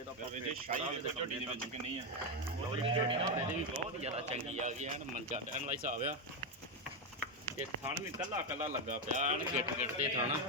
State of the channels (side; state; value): both; normal; correlation 0.07